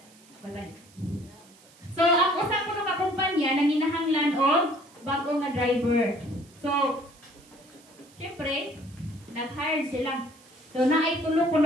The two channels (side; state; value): right; noise; hiss, 26 dB below the sound